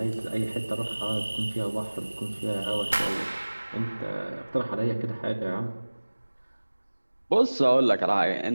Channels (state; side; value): inverted; both; correlation -1.00